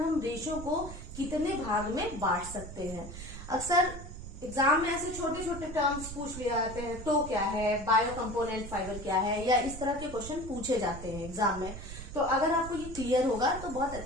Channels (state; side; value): noise; right; rumble, 11 dB below the sound